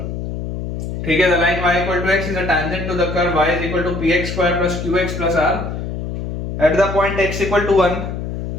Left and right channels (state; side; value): noise; left; hum, 5 dB below the sound